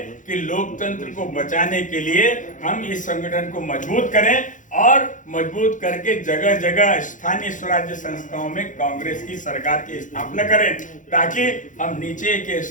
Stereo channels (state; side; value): late; right; 0.37 ms